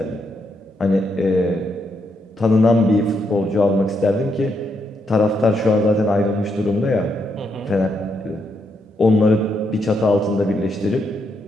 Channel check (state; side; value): normal; both; correlation 0.78